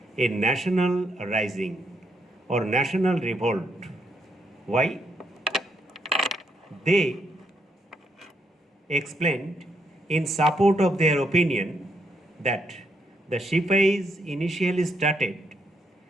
a national rising or national revolt. Why? They explained in support of their opinion that the Shipais initially started,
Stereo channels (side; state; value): both; normal; correlation 0.76